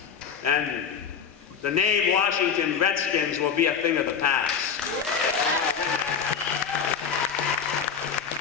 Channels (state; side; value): quieter; right; 6.8 dB